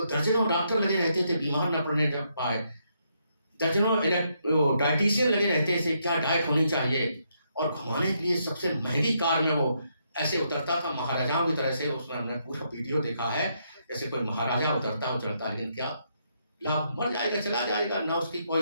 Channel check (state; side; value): inverted; both; correlation -0.76